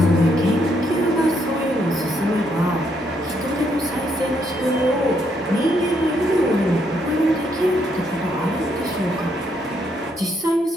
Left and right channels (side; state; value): both; normal; correlation 0.74